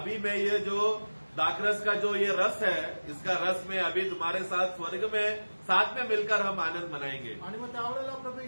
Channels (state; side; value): inverted; both; correlation -1.00